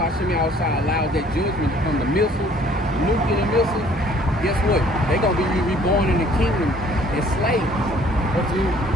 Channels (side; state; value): both; normal; correlation 0.57